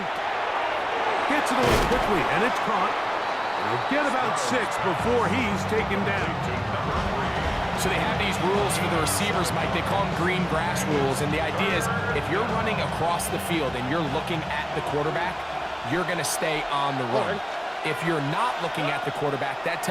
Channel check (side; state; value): both; identical; correlation 1.00